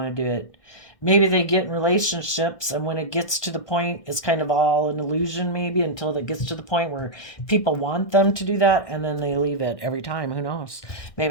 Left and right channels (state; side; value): late; right; 1.6 ms